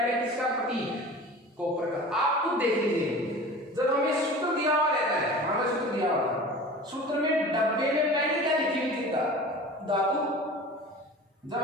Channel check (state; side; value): normal; both; correlation 0.38